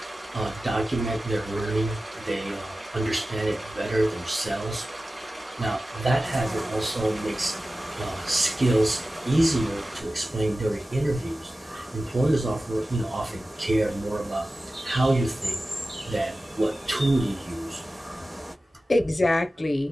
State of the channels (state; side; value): normal; both; correlation 0.95